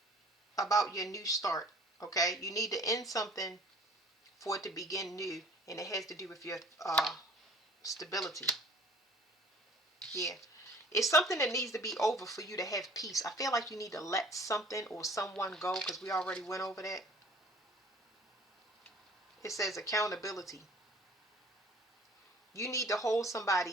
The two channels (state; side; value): normal; both; correlation 0.50